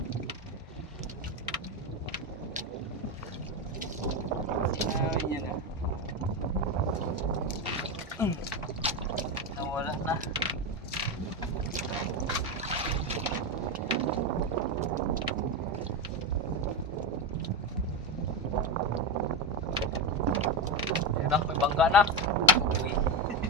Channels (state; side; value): normal; both; correlation 0.13